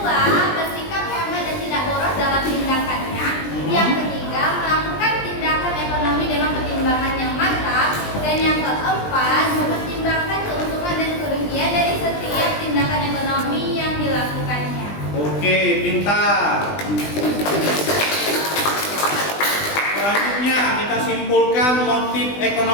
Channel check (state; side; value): late; right; 20 ms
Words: bersikap hemat dan tidak boros dalam tindakannya. Yang ketiga, melakukan tindakan ekonomi dengan pertimbangan yang matang. Dan yang keempat, mempertimbangkan keuntungan dan kerugian dari setiap tindakan ekonomi yang dilakukannya. Oke, pintar. Selanjutnya kita simpulkan motif